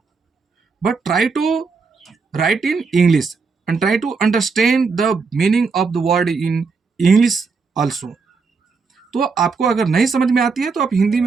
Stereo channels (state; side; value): quieter; left; 4.8 dB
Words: but try to write in English and try to understand the meaning of the word in English also. तो आपको अगर नहीं समझ में आती है तो आप हिंदी